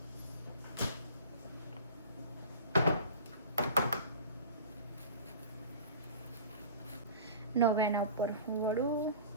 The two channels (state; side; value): inverted; both; correlation -0.40